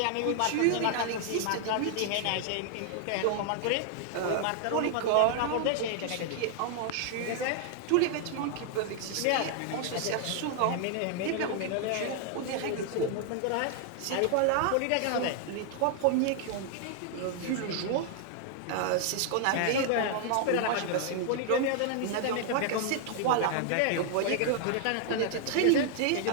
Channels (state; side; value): different; both; correlation 0.00